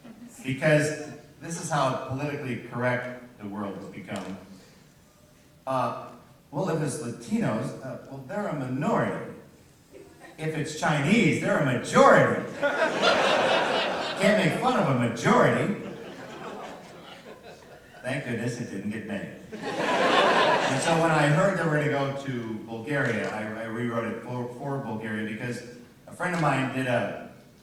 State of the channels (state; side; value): identical; both; correlation 1.00